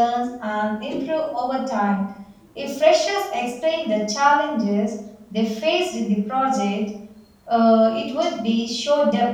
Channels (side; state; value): both; identical; correlation 1.00